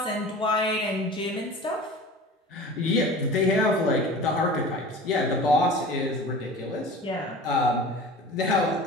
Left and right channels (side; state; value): both; normal; correlation 0.38